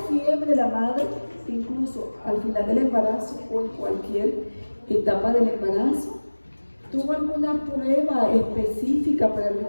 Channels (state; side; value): inverted; both; correlation -1.00